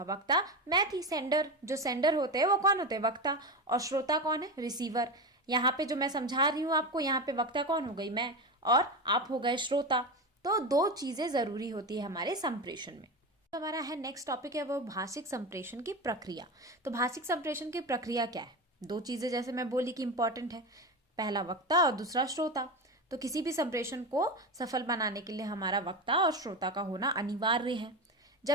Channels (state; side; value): normal; both; correlation 0.20